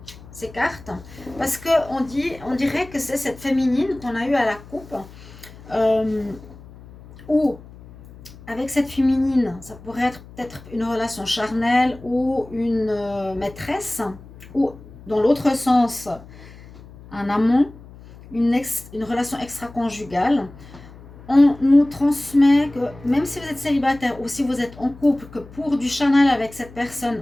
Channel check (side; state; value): left; noise; hum, 19 dB below the sound